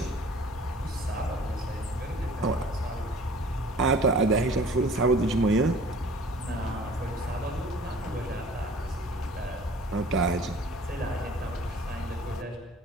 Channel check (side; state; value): both; normal; correlation 0.49